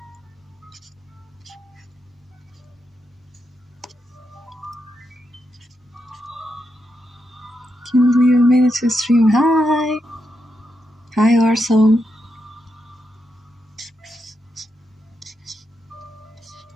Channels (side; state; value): both; normal; correlation 0.84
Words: Can't believe I made it to stream. Hi. Hi, Arso.